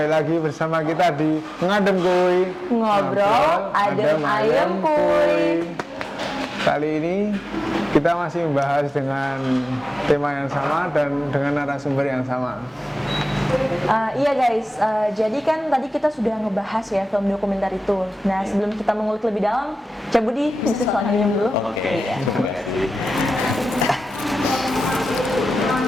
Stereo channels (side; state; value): both; normal; correlation 0.95